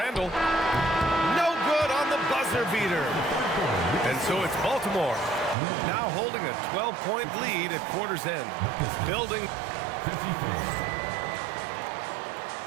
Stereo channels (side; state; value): left; drops out; at 5.6 s